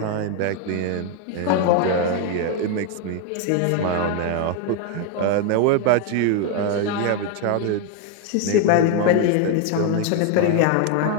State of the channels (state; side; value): different; both; correlation 0.01